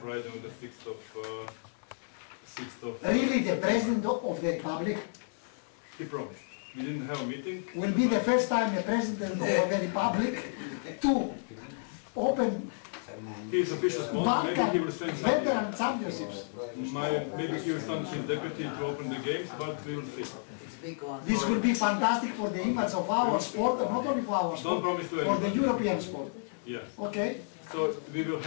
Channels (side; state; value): right; silent; digital silence